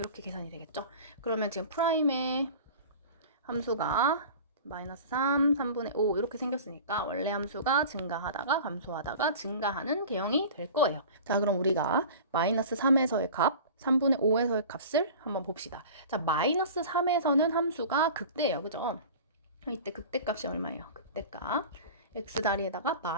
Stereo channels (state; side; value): inverted; both; correlation -0.38